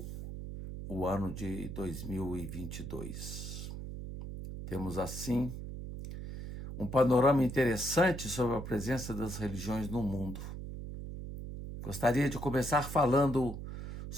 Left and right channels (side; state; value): right; noise; hum, 8 dB below the sound